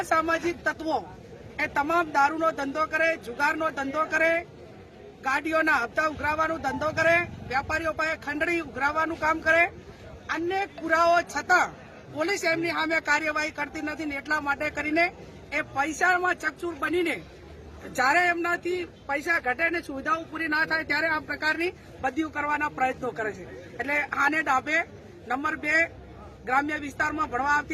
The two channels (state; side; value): identical; both; correlation 1.00